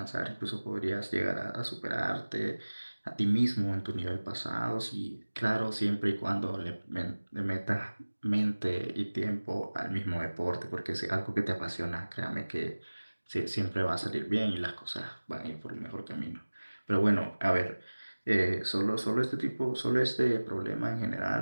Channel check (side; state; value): both; inverted; correlation -1.00